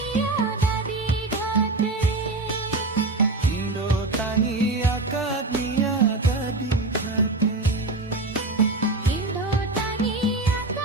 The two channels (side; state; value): left; quieter; 3.1 dB